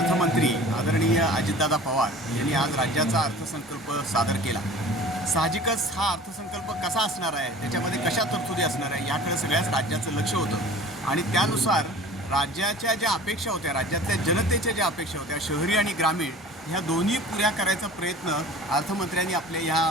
आदरणीय अजितदादा पवार यांनी आज राज्याचा अर्थसंकल्प सादर केला। साहजिकच हा अर्थसंकल्प कसा असणार आहे, त्याच्यामध्ये कशा तरतुदी असणार आहे याकडे सगळ्याच राज्याचं लक्ष होतं आणि त्यानुसार राज्याच्या ज्या अपेक्षा होत्या, राज्यातल्या जनतेच्या ज्या अपेक्षा होत्या, शहरी आणि ग्रामीण ह्या दोन्ही पुऱ्या करायचा प्रयत्न अर्थमंत्र्यांनी आपल्या ह्या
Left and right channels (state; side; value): normal; both; correlation 0.43